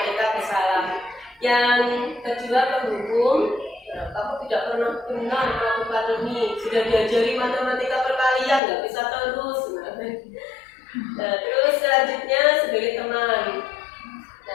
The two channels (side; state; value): right; drops out; at 8.6 s